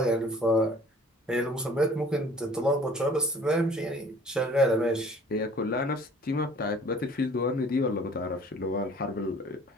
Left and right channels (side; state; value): both; normal; correlation 0.51